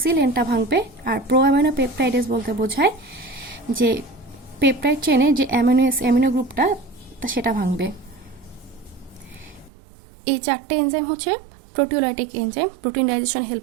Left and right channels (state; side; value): drops out; left; at 9.7 s